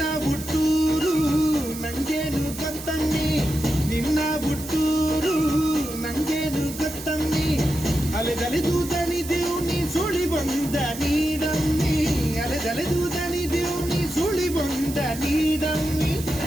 ಹುಟ್ಟೂರು ನಂಗೇನು ಗೊತ್ತನ್ನಿ ನಿನ್ನ ಹುಟ್ಟೂರು ನಂಗೇನು ಗೊತ್ತನ್ನಿ ಅಲೆದಲೆದು ದಣಿದೆವು ನೀ ಸುಳಿ ಬಂದ ನೀಡಮ್ಮಿ ಅಲೆದಲೆದು ದಣಿದೆವು ನೀ ಸುಳಿ ಬಂದ ನೀಡಮ್ಮಿ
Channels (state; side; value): noise; right; hiss, 12 dB below the sound